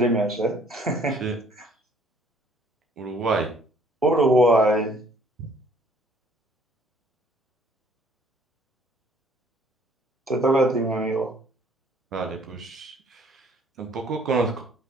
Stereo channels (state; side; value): normal; both; correlation 0.59